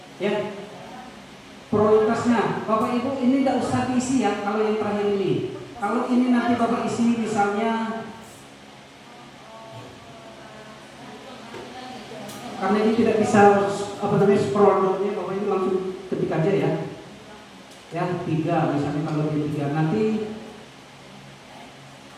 ya prioritasnya Bapak Ibu ini tidak usah diisi ya. Kalau yang terakhir ini, kalau ini nanti Bapak isi misalnya, karena ini tidak bisa scroll down-nya, Bapak Ibu langsung ketik aja ya. Ya 3 misalnya, kalau dia 3 nanti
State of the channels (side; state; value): both; identical; correlation 1.00